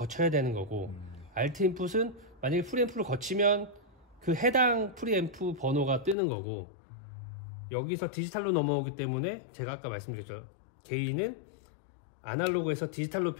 되는 거고, Alt 인풋은 만약에 프리앰프를 거치면 그 해당 프리앰프 번호가 뜨는 거고, 여기서 디지털로 넘어오기 때문에 제가 아까 말씀드렸죠. 개인은 아날로그에서 디지털로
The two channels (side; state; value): right; drops out; at 6.2 s